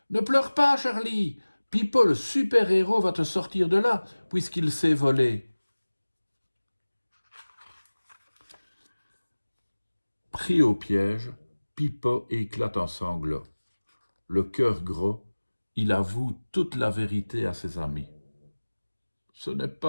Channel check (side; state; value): both; inverted; correlation -1.00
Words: Ne pleure pas, Charlie! Pipo, le super-héros, va te sortir de là, puisqu'il sait voler. » Pris au piège, Pipo éclate en sanglots. Le cœur gros, il avoue toute la vérité à ses amis. « Ce n'est